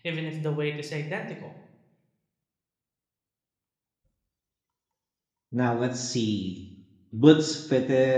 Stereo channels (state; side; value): identical; both; correlation 1.00